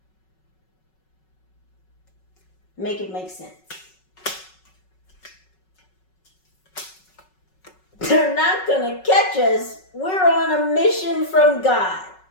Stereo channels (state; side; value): late; right; 5.4 ms